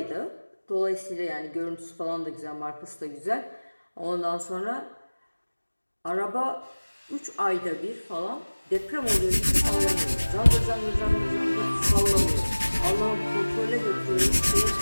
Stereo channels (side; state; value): both; inverted; correlation -1.00